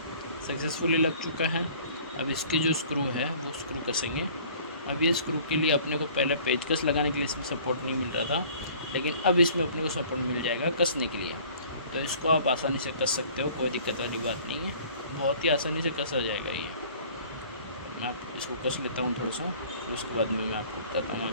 सक्सेसफुली लग चुका है। अब इसके जो स्क्रू है वो स्क्रू कसेंगे। अब ये स्क्रू के लिए अपने को पहले पेचकस लगाने के लिए इसमें सपोर्ट नहीं मिल रहा था, लेकिन अब इसमें अपने को सपोर्ट मिल जाएगा कसने के लिए, तो इसको आप आसानी से कस सकते हो, कोई दिक्कत वाली बात नहीं है, बहुत ही आसानी से कसा जाएगा ये। मैं आप इसको कस लेता हूँ थोड़ा सा, फिर उसके बाद में मैं आपको बताता हूँ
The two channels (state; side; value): inverted; both; correlation -0.51